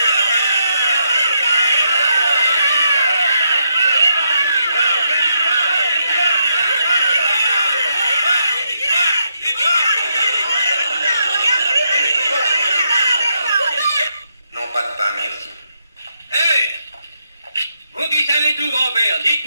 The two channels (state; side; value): inverted; both; correlation -0.79